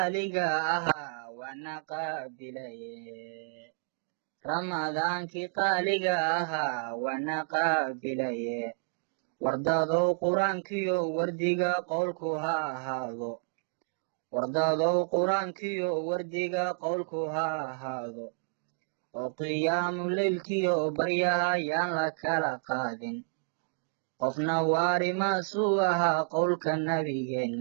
ahaa waana qaabilaye ramadaankii qaaliga ahaa waana qaabilaye wardadow qur-aankiyo wardiga qowlku ha ahaado wardadow qur-aankiyo wardiga qowlku ha ahaado oo qiyaamu leylkiyo baryaha yaan la kala qaadin qofna waari maasuu ahaa qowlka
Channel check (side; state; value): left; silent; digital silence